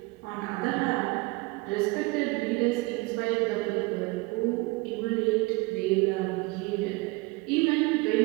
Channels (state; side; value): quieter; left; 24.5 dB